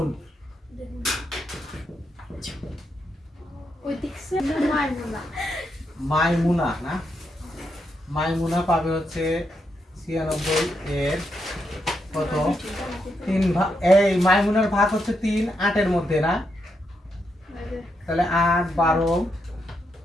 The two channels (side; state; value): both; normal; correlation 0.81